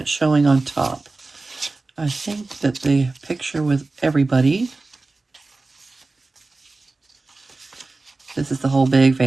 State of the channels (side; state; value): left; quieter; 3.4 dB